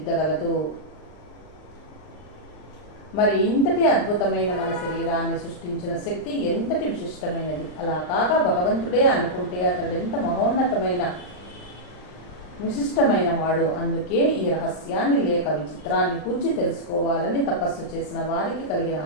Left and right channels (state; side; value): late; right; 39 ms